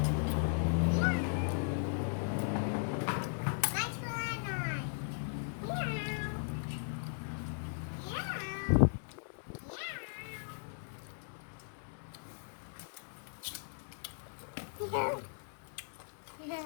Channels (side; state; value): right; silent; digital silence